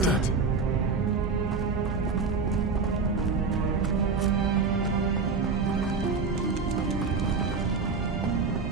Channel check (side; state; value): left; quieter; 4.7 dB